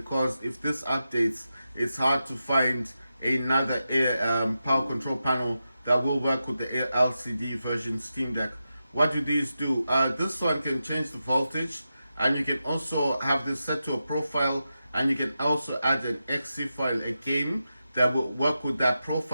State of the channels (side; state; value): both; inverted; correlation -0.90